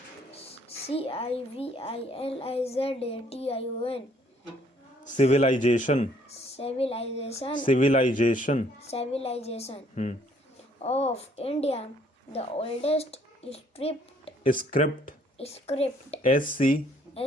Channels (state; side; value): normal; both; correlation 0.63